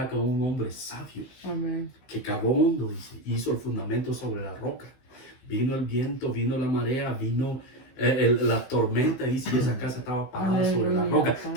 con un hombre sabio Amén. que cavó hondo, dice, hizo el fundamento sobre la roca. Vino el viento, vino la marea, vino la tormenta, dice, y esa casa estaba parada sobre la roca.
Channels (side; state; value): right; late; 16 ms